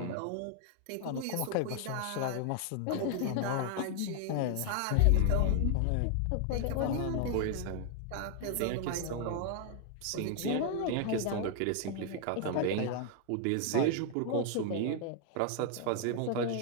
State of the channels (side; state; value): both; different; correlation 0.00